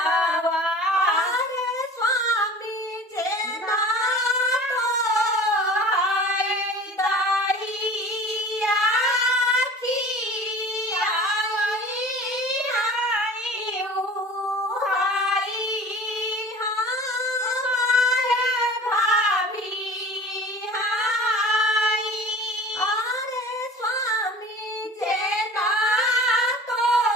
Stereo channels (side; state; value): both; normal; correlation 0.42